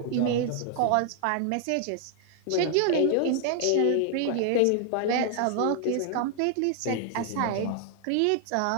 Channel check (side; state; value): both; different; correlation 0.00